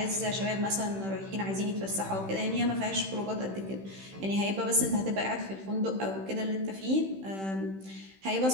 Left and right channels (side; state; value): left; late; 15 ms